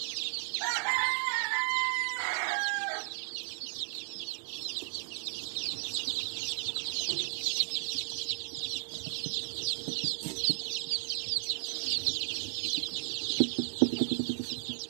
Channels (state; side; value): silent; left; digital silence